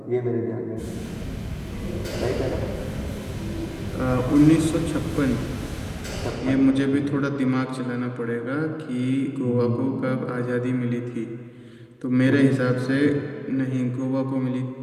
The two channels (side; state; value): both; identical; correlation 1.00